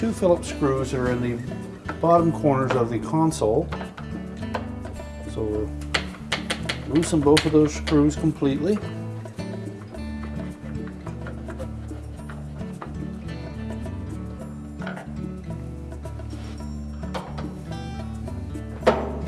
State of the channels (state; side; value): identical; both; correlation 1.00